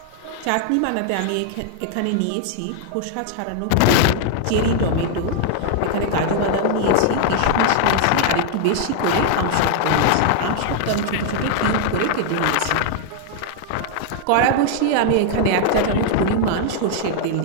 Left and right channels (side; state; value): both; different; correlation 0.00